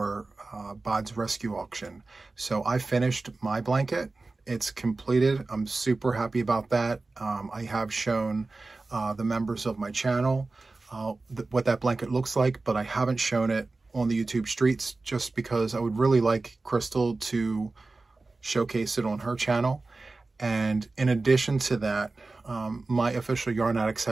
Bod's rescue auction. So I finished my blanket. It's completed. I'm super happy about that. I have shown the members of my channel what that blanket looks like, but I haven't shown it on the YouTube streets just because I would really like Crystal to showcase it on her channel. And in addition to that, my official yarn addicts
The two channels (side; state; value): left; quieter; 3.5 dB